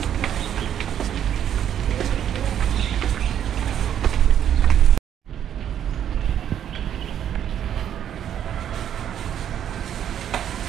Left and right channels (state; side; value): quieter; left; 9.8 dB